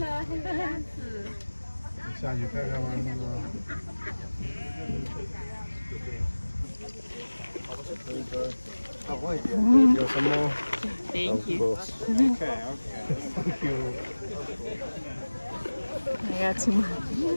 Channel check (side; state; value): both; inverted; correlation -1.00